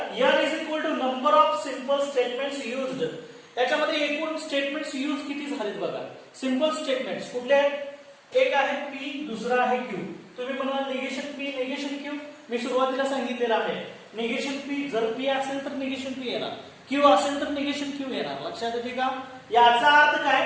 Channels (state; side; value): identical; both; correlation 1.00